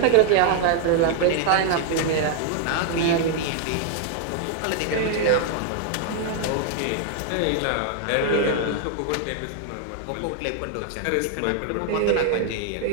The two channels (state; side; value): different; both; correlation 0.00